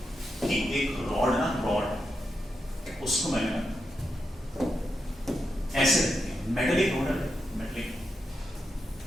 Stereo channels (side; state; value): both; normal; correlation 0.86